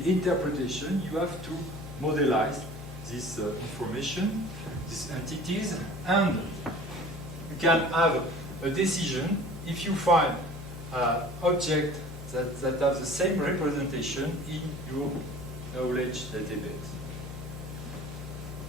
interpretation, you have to modelize this information, these entities, and you can have a decision if you find objects that have the same representation in your knowledge database.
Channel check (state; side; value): noise; left; hum, 11 dB below the sound